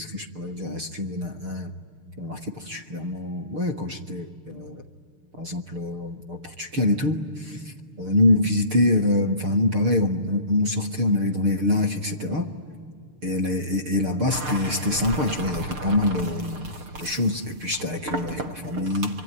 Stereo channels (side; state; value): left; late; 6.6 ms